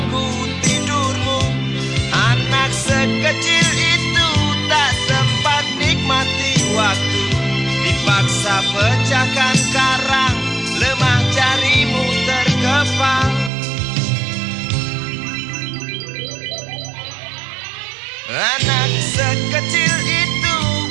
tidurmu. Anak sekecil itu tak sempat nikmati waktu, dipaksa pecahkan karang, lemah jarimu terkepal. Anak sekecil itu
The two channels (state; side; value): drops out; left; at 13.5 s